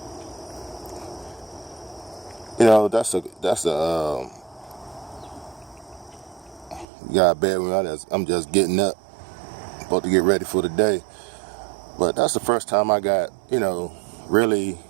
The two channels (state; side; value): drops out; left; at 6.9 s